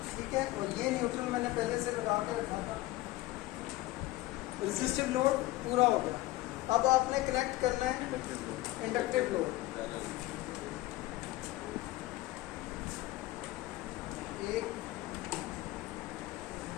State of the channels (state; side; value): quieter; right; 17.7 dB